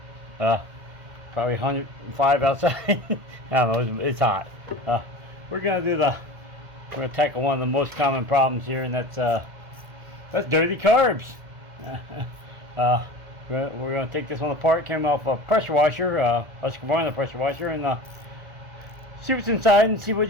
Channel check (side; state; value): left; late; 1.8 ms